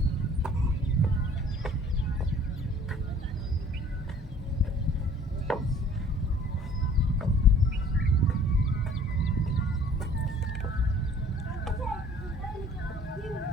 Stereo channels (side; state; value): both; normal; correlation 0.53